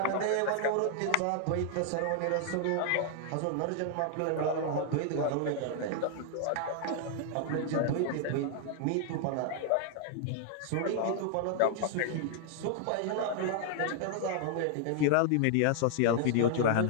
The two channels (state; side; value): different; both; correlation 0.00